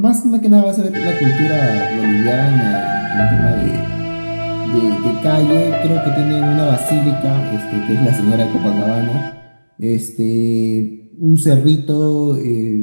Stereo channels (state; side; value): inverted; both; correlation -1.00